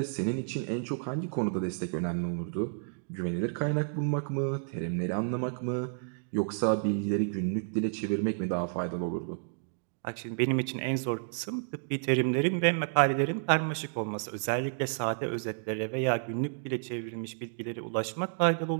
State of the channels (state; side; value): silent; left; digital silence